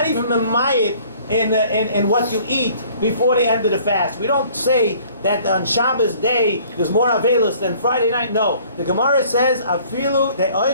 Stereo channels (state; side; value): inverted; both; correlation -0.55